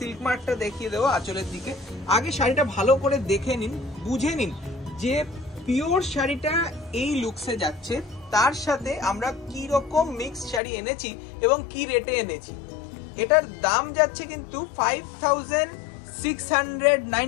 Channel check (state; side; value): drops out; right; at 10.6 s